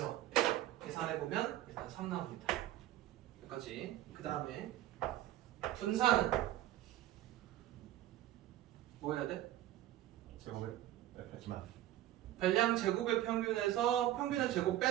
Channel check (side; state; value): left; quieter; 13.6 dB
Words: 계산해보면 일단 3 나옵니다. 여기까지. 그 다음에 분산은 뭐 해야 돼? 제곱을 하지만 별량 제곱의 평균에서 평균의 제곱